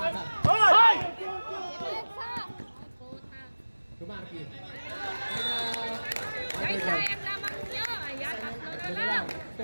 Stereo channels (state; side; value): inverted; both; correlation -1.00